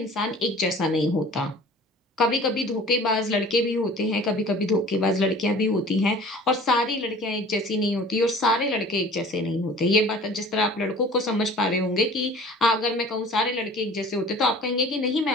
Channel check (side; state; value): both; normal; correlation 0.45